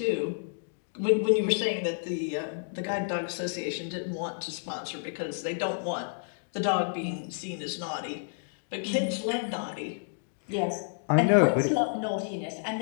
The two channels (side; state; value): right; silent; digital silence